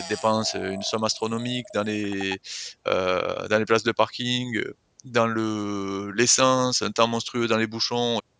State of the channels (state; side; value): identical; both; correlation 1.00